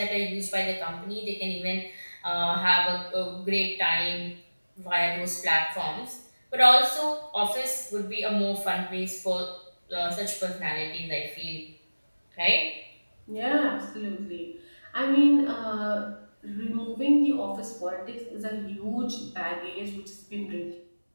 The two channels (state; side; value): inverted; both; correlation -1.00